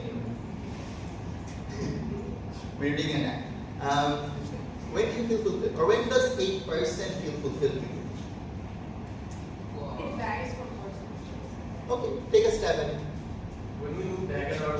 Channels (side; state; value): both; identical; correlation 1.00